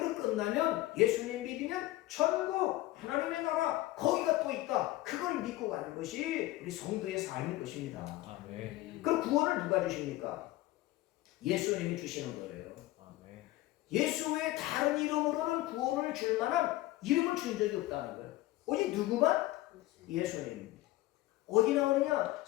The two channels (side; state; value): right; quieter; 17.3 dB